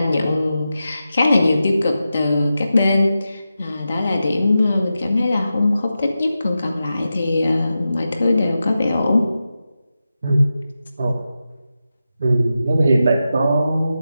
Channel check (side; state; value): both; inverted; correlation -0.91